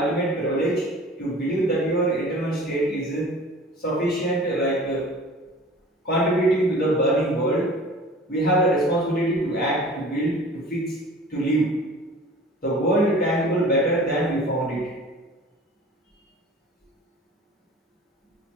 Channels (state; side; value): normal; both; correlation 0.43